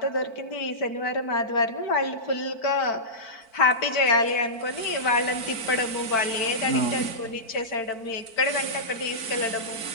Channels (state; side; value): late; right; 4.5 ms